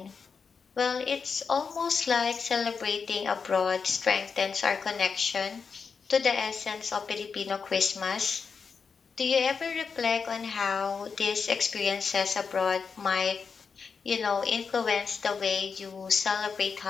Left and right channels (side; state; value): right; quieter; 5.6 dB